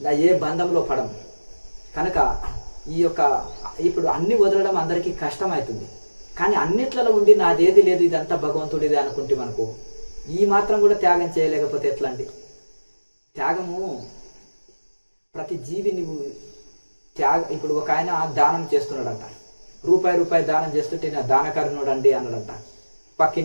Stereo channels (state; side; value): inverted; both; correlation -1.00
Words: ఏ బంధంలో పడము. కనుక ఇప్పుడు అన్ని వదలడం అందరికీ కష్టమవుతుంది. కానీ అన్నిట్లలో ఉండి నాదేది లేదు, ఇదంతా భగవంతుడిదే అనుకుంటే మనకు ఈ మాత్రం కూడా త్యాగం చేయలేకపోతే ఎట్లా అండి? త్యాగము ప్రతి జీవి నువ్వు ఇప్పుడు ఒక ఆయన దానం చేస్తున్నాడంట, రూపాయి దానం చేస్తుంటే నా దానకరుణుడు అండి అన్నాడంట